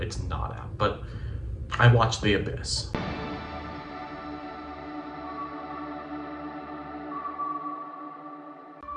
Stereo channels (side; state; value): both; identical; correlation 1.00